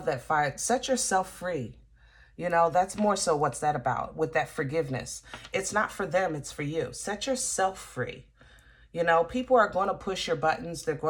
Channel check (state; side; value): identical; both; correlation 1.00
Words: that fire. Set yourself free. You know, that's more so what's that about with that forgiveness. It's not for them, it's for you. Set yourself free. You know, people are going to push your buttons. They're